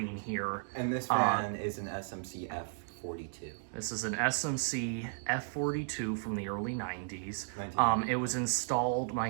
here. And this fan is an SMC F42. This is an SMC F42 from the early 90s. It was installed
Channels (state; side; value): silent; left; digital silence